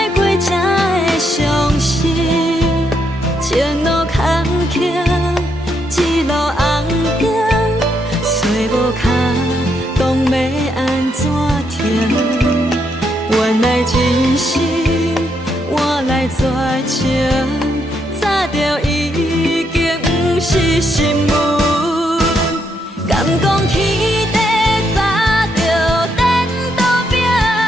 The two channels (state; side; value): normal; both; correlation 0.77